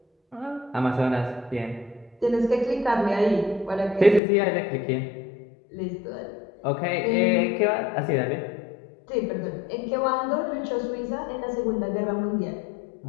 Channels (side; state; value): right; drops out; at 4.2 s